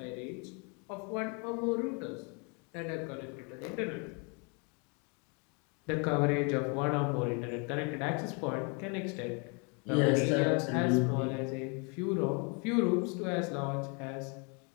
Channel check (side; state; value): right; quieter; 34.4 dB